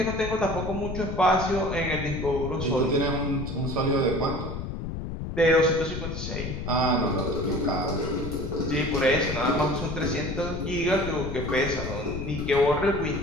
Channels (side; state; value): left; noise; rumble, 6 dB below the sound